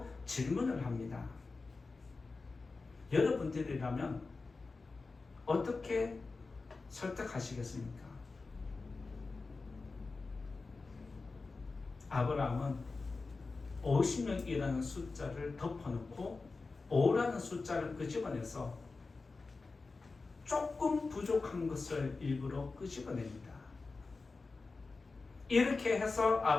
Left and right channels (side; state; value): right; quieter; 4.0 dB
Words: 질문을 합니다. 여러분들이라면 어떻게 설득하시겠습니까? 아브라함은 50명이라는 숫자를 덮어놓고 5라는 숫자를 끄집어내서 조금 부족한 것을 일부러 끄집어냅니다. 이렇게 해서